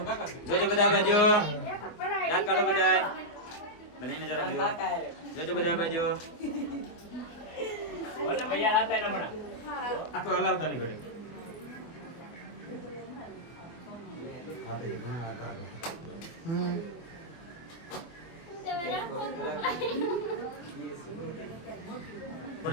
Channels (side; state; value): right; late; 24 ms